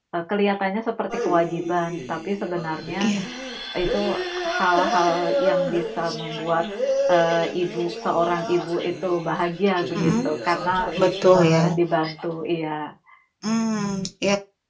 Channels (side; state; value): both; identical; correlation 1.00